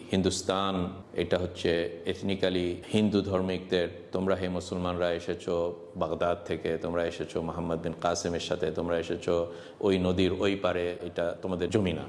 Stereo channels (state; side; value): identical; both; correlation 1.00